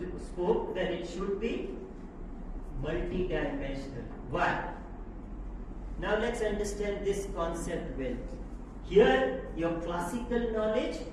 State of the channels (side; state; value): both; identical; correlation 1.00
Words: spoke, that it should be multi-dimensional. Why? Now let's understand this concept well. Here, your classical knowledge